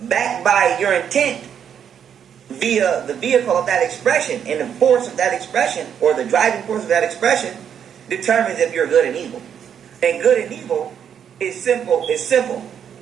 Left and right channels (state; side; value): quieter; left; 8.4 dB